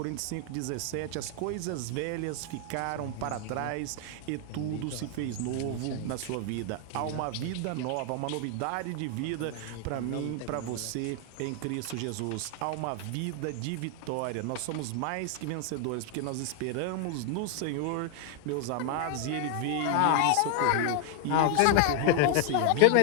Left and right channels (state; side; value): different; both; correlation 0.00